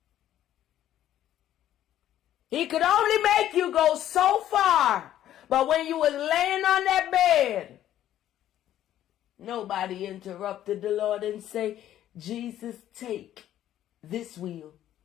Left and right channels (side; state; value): right; quieter; 12.0 dB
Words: He could only make you go so far. But when you was laying on that bed, nobody interrupted the Lord and say, Jesus, take this wheel.